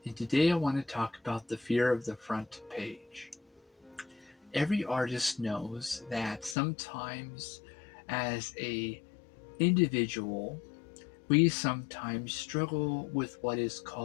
and today I want to talk about the fear of the front page. Every artist knows that sometimes as a individual, we sometimes struggle with what is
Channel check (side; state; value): right; drops out; at 6.6 s